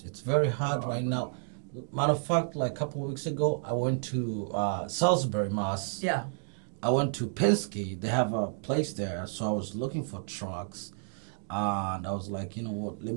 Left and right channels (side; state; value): left; silent; digital silence